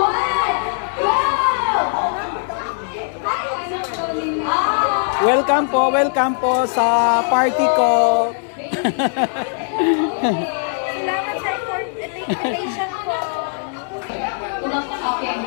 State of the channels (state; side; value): silent; right; digital silence